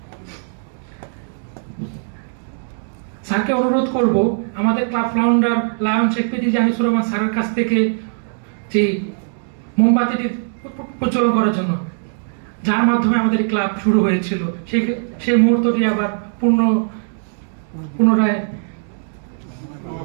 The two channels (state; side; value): silent; left; digital silence